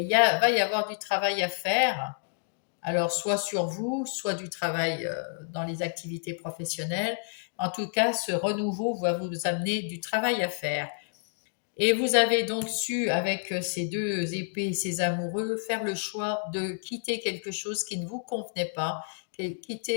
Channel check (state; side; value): silent; right; digital silence